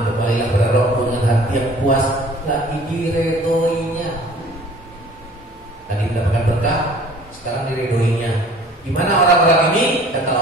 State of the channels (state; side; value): normal; both; correlation 0.50